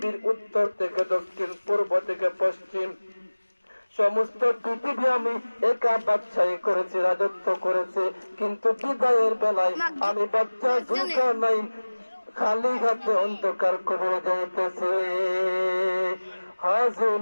উত্তর থেকে দক্ষিণ, পূর্ব থেকে পশ্চিম সমস্ত পৃথিবী আমি একা বাদশাহী করেছি, রাজত্ব করেছি, কিন্তু বিদায়ের বেলায় আমি বাচ্চা জুলকারনাইন খালি হাতে অন্ধকার কবরে যাইতেছে।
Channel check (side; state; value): both; inverted; correlation -1.00